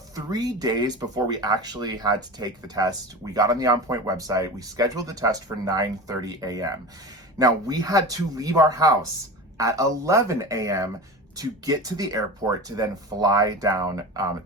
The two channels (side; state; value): both; normal; correlation 0.30